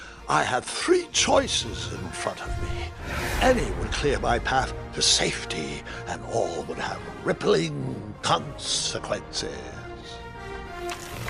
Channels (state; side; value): identical; both; correlation 1.00